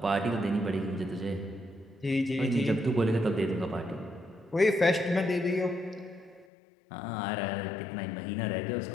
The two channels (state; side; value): drops out; right; at 6.5 s